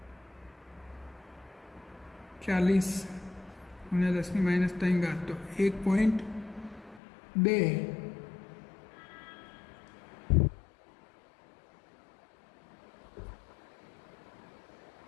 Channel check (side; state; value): right; drops out; at 7.0 s